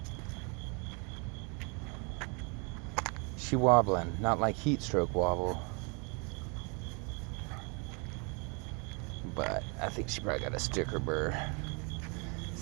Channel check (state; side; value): quieter; left; 33.4 dB